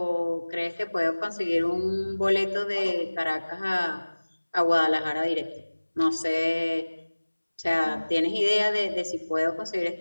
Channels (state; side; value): inverted; both; correlation -1.00